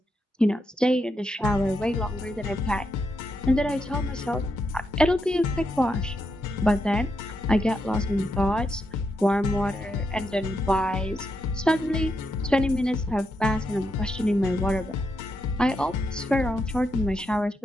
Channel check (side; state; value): both; normal; correlation 0.82